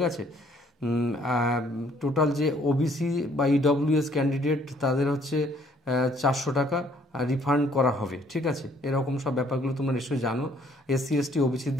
আছে? টোটাল যে ওবিসি বা ইডব্লিউএস ক্যান্ডিডেট, তাদের হচ্ছে 400 টাকা রিফান্ড করা হবে, ঠিক আছে? এরকম সব ব্যাপারগুলো তোমরা নিশ্চয়ই জানো। এসসি এসটি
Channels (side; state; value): both; normal; correlation 0.62